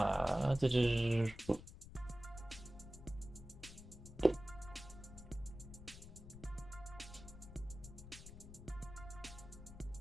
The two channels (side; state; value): left; noise; rumble, 14 dB below the sound